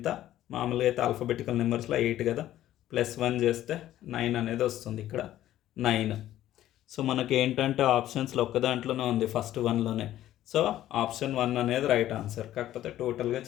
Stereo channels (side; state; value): right; quieter; 13.2 dB